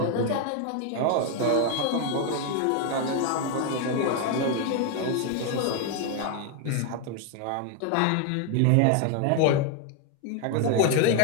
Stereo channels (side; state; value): both; different; correlation 0.01